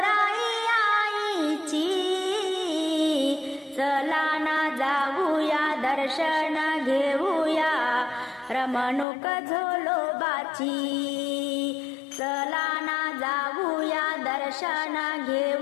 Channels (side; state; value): right; drops out; at 9.1 s